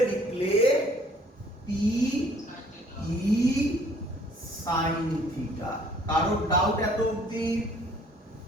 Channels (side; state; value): both; normal; correlation 0.58